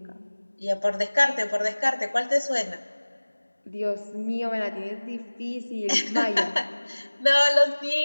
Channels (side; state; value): both; inverted; correlation -1.00